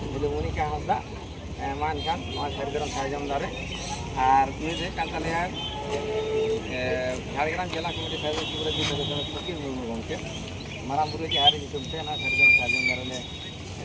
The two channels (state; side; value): identical; both; correlation 1.00